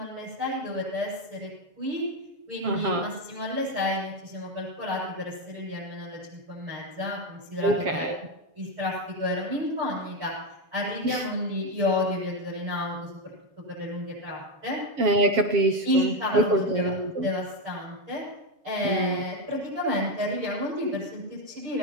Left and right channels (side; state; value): left; late; 7.3 ms